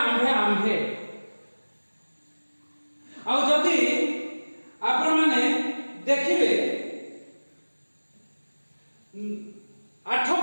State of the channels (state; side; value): inverted; both; correlation -1.00